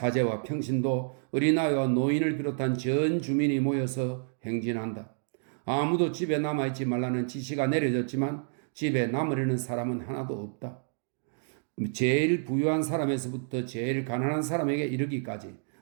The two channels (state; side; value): silent; left; digital silence